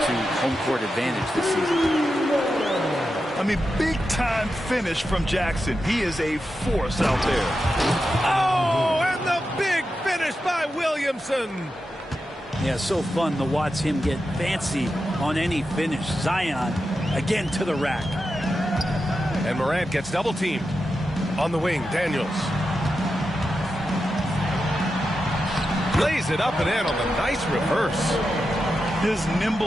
home court advantage this season. I mean, big-time finish from Jackson. He is a force out there. Oh, and the big finish by Williamson. Yeah, so fun to watch him get fancy on any finish. Zion, again to the rack. And Morant gets double-teamed. On the wing, Daniels. Lays it up and in on the nice reverse. His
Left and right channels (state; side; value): normal; both; correlation 0.89